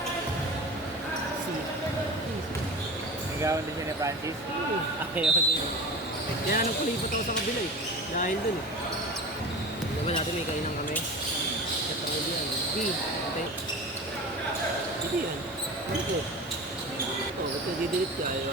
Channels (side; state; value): both; normal; correlation 0.33